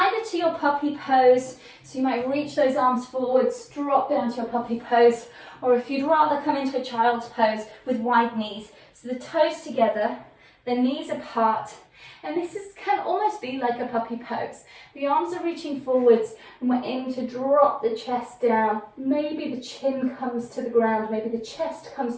to your puppy pose. So you might reach those arms forwards, drop down to your puppy pose, or if you'd rather come into a child's pose with wide knees. So the toes together, the knees apart, and this can almost be like a puppy pose. The arms are reaching forwards, and we're aiming to drop the chest down. Maybe the chin comes to the ground, maybe the chest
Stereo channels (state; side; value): identical; both; correlation 1.00